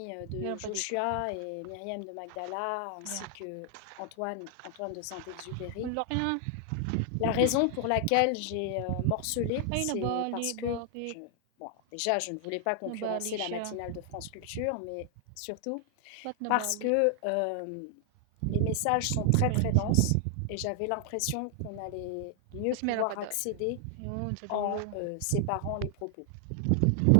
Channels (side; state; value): both; different; correlation 0.00